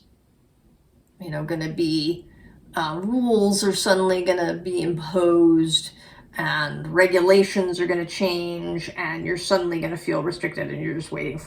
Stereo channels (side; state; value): both; identical; correlation 1.00